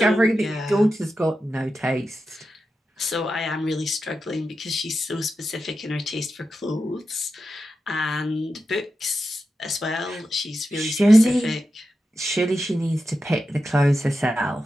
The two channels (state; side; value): normal; both; correlation 0.90